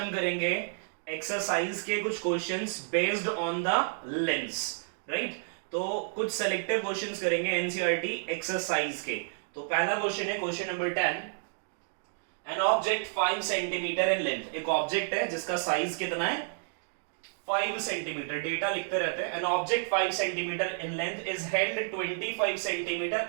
करेंगे एक्सरसाइज के कुछ questions based on the lens. Right, तो कुछ सेलेक्टिव क्वेश्चंस करेंगे एनसीईआरटी एक्सरसाइज के। तो पहला क्वेश्चन है question number 10। An object 5 centimetre in length. एक ऑब्जेक्ट है जिसका साइज कितना है 5 सेंटीमीटर। डेटा लिखते रहते हैं। An object 5 centimetre in length is held 25 centimetre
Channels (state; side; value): silent; left; digital silence